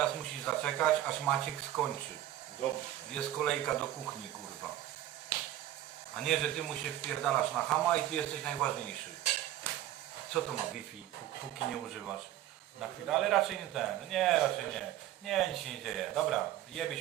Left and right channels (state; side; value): quieter; left; 13.0 dB